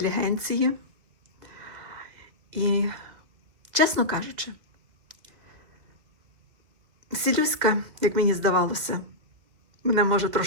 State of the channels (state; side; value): late; left; 2.2 ms